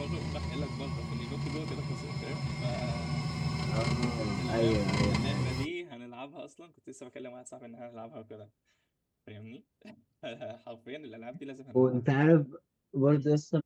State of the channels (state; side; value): identical; both; correlation 1.00